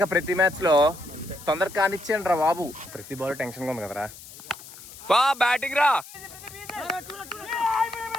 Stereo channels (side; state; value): left; noise; hiss, 17 dB below the sound